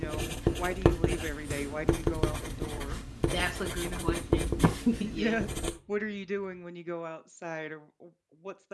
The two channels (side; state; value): both; identical; correlation 1.00